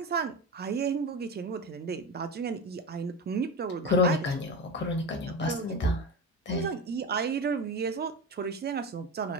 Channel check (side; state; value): both; normal; correlation 0.23